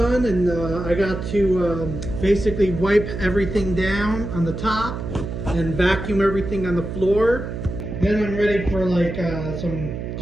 and I got to basically wipe everything down on the top and vacuum everything on the floor, then I'm ready for like some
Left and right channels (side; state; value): right; noise; hum, 6 dB below the sound